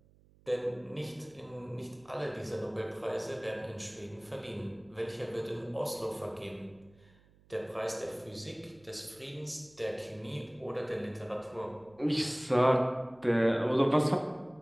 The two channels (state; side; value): noise; right; hum, 28 dB below the sound